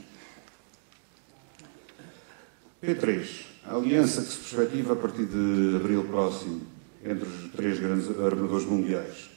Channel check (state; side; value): silent; left; digital silence